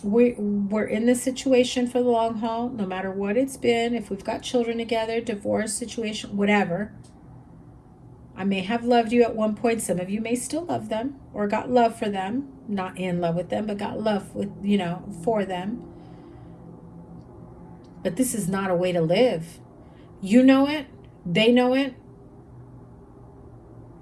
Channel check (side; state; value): both; identical; correlation 1.00